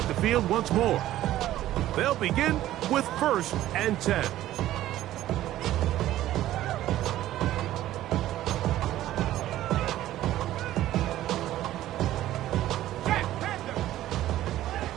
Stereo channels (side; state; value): left; quieter; 14.0 dB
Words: the field once more. They'll begin with 1st and 10.